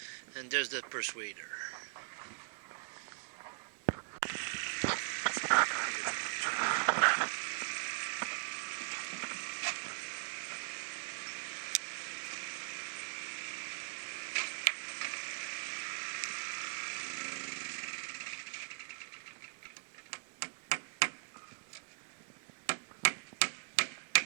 and there's the persuader.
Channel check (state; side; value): silent; left; digital silence